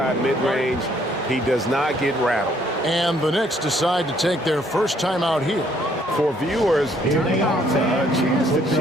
mid-range, he does not get rattled. And the Knicks decide to take their first time out here. For viewers, timeout's a chance to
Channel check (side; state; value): both; normal; correlation 0.66